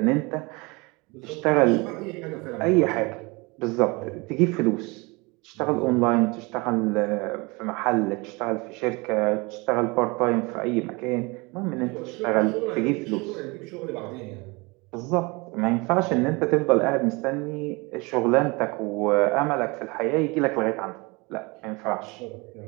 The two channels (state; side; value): quieter; left; 26.4 dB